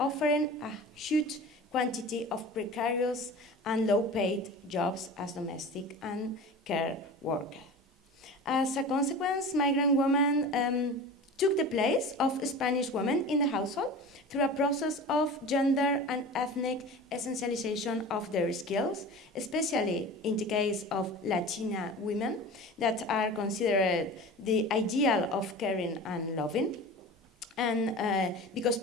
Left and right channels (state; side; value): normal; both; correlation 0.35